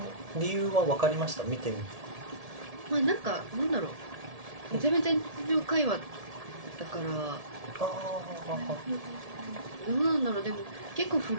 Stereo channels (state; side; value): late; left; 1.7 ms